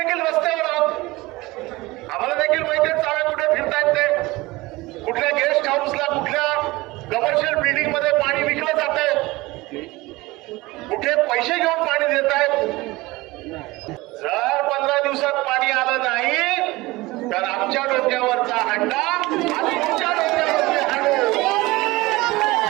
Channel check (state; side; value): quieter; left; 20.9 dB